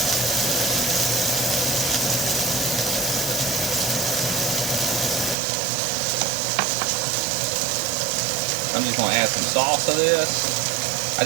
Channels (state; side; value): drops out; left; at 5.4 s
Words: I'm just going to add some sauce to this. I